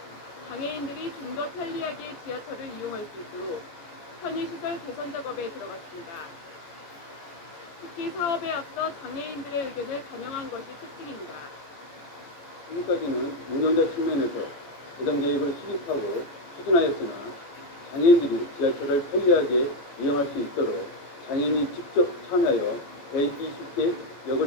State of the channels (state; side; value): late; right; 14 ms